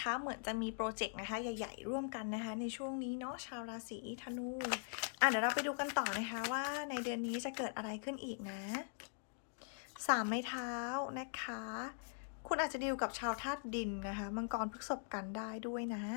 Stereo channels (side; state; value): right; silent; digital silence